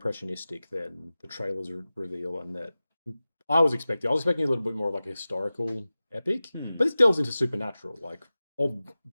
than the trailers reveal, and that I was expecting a little bit more of like a historical epic, but this delves into supernatural, like or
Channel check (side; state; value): both; inverted; correlation -0.97